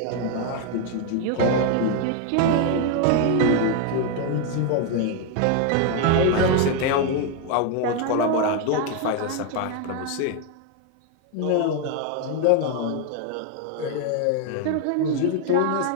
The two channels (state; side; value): different; both; correlation 0.01